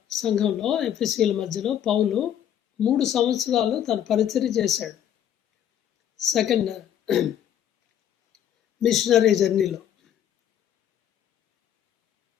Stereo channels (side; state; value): right; quieter; 10.1 dB